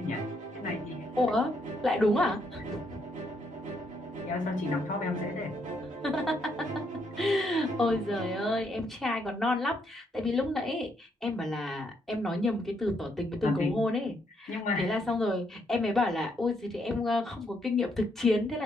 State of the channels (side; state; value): both; normal; correlation 0.74